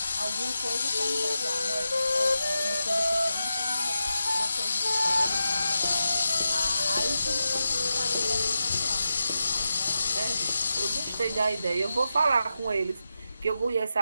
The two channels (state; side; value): inverted; both; correlation -0.89